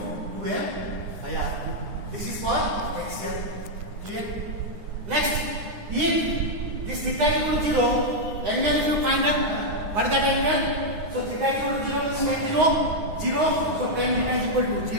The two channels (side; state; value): left; late; 9.7 ms